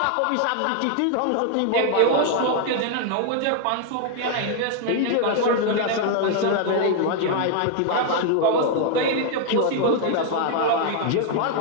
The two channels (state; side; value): different; both; correlation 0.00